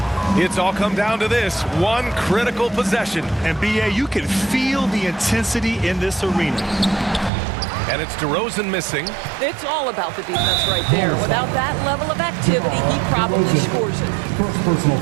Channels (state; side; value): drops out; left; at 7.3 s